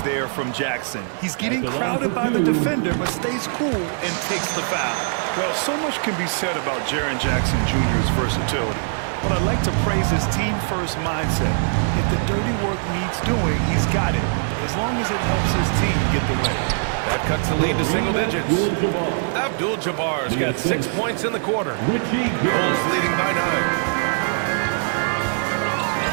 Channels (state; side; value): silent; left; digital silence